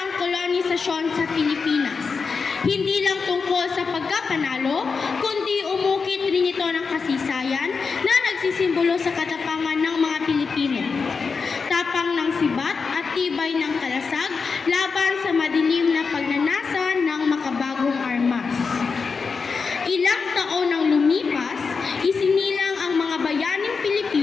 ang kolonisasyon sa Pilipinas. Hindi lang tungkol sa pagkapanalo, kundi umukit rin ito ng kasaysayan na nagsisimbolo sa katapangan ng mga Pilipino. Tapang ng sibat at tibay ng kalasag laban sa madilim na pagnanasa ng makabagong armas. Ilang taon nang lumipas, isinilang ang mga bayaning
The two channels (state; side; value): quieter; right; 5.0 dB